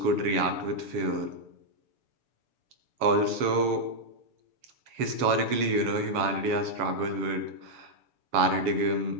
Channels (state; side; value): late; left; 7.0 ms